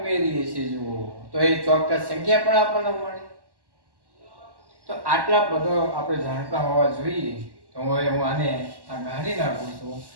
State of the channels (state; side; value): late; left; 1.1 ms